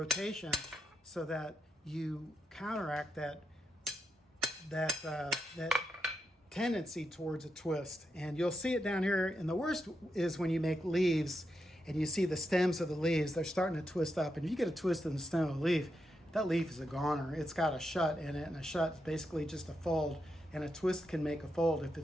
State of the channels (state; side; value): normal; both; correlation 0.84